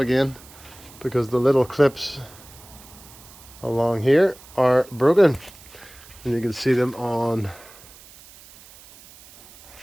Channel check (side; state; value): right; noise; hiss, 21 dB below the sound